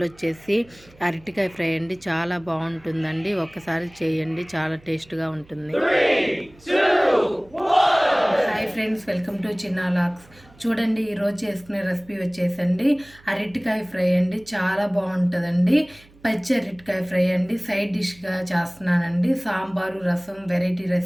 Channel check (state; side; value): noise; right; hum, 26 dB below the sound